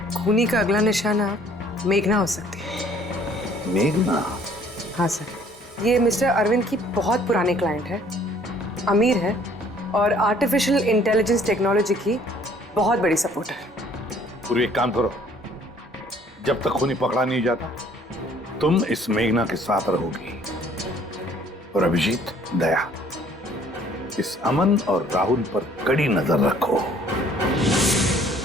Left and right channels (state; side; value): normal; both; correlation 0.58